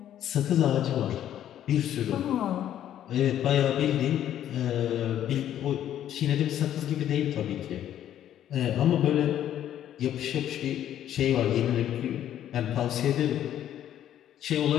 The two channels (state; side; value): quieter; right; 11.1 dB